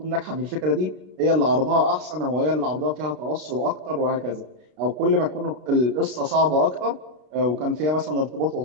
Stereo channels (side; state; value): left; late; 32 ms